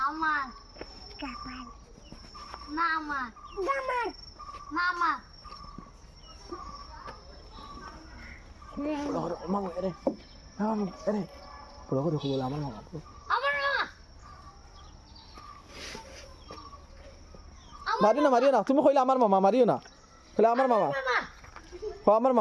আমার না আমার না আমার মামা এরে মামা এরে পুরো করে বলে আমার মামা আমার মামা মারিও না তুমি কইলে আমার মামা মারিও না কইলে আমার মামা হ আমার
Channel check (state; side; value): identical; both; correlation 1.00